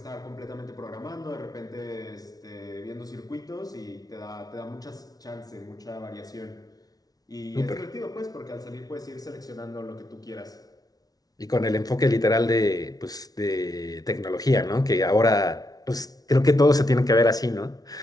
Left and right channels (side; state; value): right; late; 0.18 ms